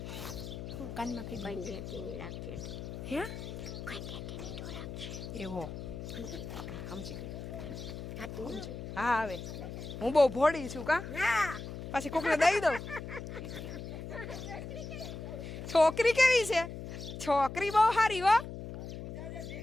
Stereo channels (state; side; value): noise; left; hum, 8 dB below the sound